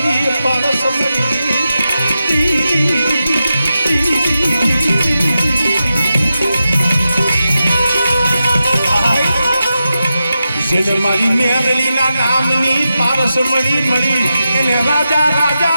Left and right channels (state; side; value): inverted; both; correlation -0.90